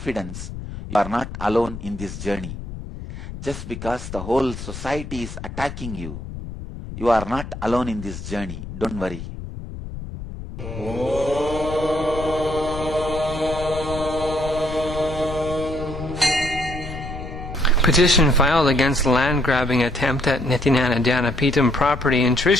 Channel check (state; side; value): noise; left; rumble, 10 dB below the sound